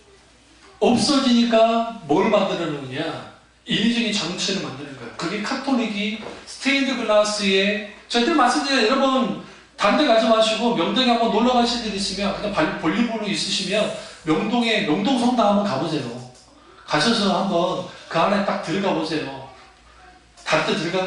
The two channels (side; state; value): both; identical; correlation 1.00